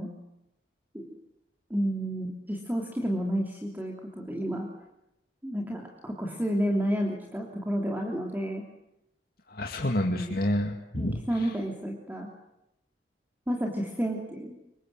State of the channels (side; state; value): both; normal; correlation 0.87